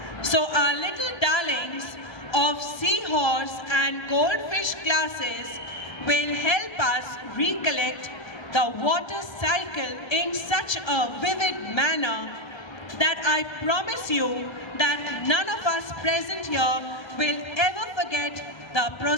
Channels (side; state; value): right; late; 1.2 ms